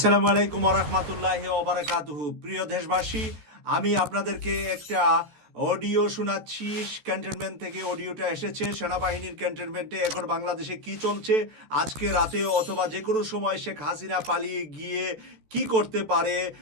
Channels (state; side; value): late; left; 14 ms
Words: আলাইকুম ওয়া রাহমাতুল্লাহি ওয়া বারাকাতুহু। প্রিয় দেশবাসী, আমি আপনাদেরকে একটা অডিও শোনাচ্ছি। ক্যান্টনমেন্ট থেকে অডিওটা এসেছে। সেনাবাহিনীর ক্যান্টনমেন্টে এখন বাংলাদেশে কি চলছে, আজকে রাতে অথবা যে কোনো সময় শেখ হাসিনা পালিয়ে গিয়ে কি করতে পারে,